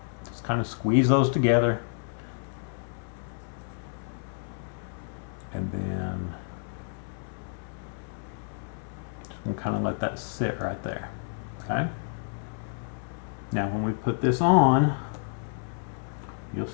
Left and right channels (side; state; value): right; silent; 58 dB below the other